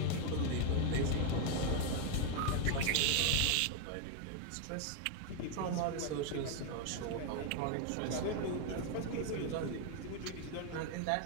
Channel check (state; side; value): different; both; correlation 0.00